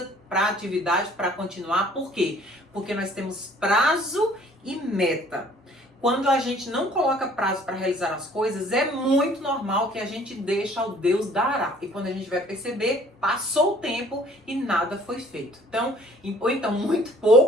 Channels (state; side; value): normal; both; correlation 0.56